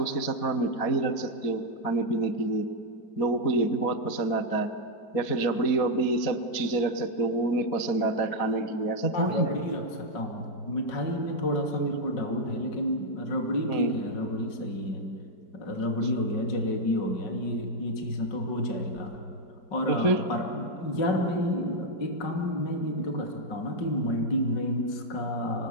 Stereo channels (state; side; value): late; right; 4.2 ms